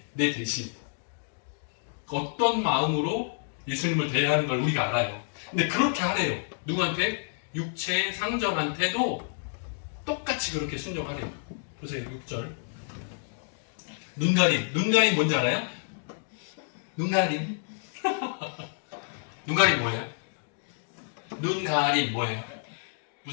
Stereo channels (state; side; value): silent; right; digital silence